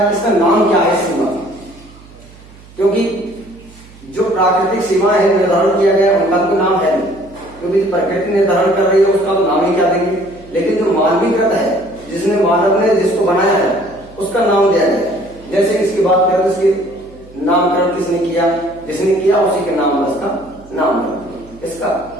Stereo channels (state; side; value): noise; right; hum, 22 dB below the sound